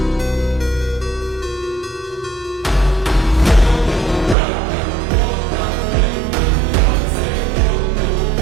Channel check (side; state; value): left; drops out; at 4.4 s